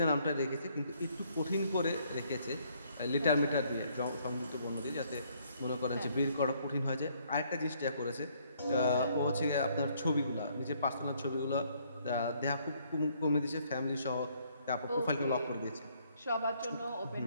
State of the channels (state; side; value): inverted; both; correlation -0.67